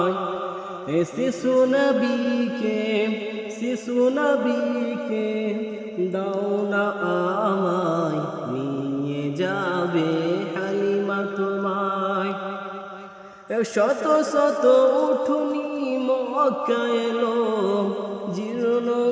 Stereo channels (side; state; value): both; identical; correlation 1.00